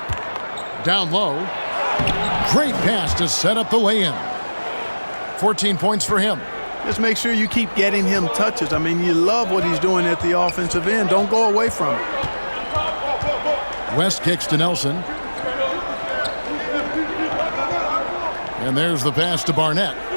Down low. Great pass to set up the lay-in. 14 points for him. Just make sure you keep getting him touches. I mean, you love what he's doing at the offensive end. Don't go away from it. West kicks to Nelson. And there's the pass to Barnett.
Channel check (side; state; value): both; inverted; correlation -1.00